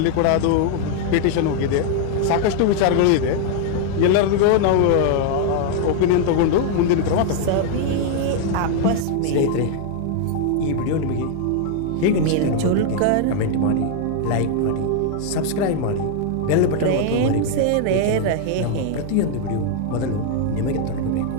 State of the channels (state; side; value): different; both; correlation 0.00